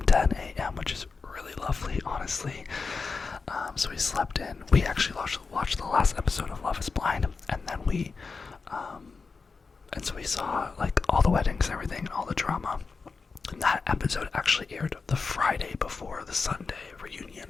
which is really lovely, honestly. So we slept in. We actually watched the last episode of Love Is Blind, and then and so we saw like all the weddings and everything, and all the drama. And that episode actually aired the Friday before the Sunday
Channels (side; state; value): right; quieter; 4.6 dB